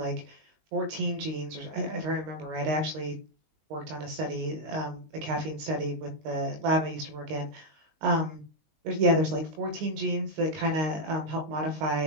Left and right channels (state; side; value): late; left; 19 ms